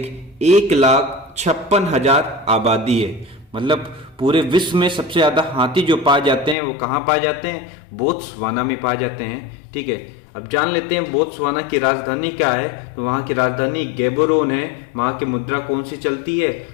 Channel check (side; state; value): right; drops out; at 6.6 s